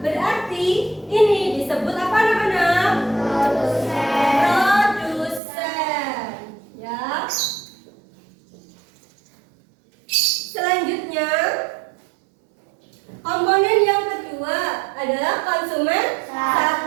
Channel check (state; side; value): drops out; left; at 5.4 s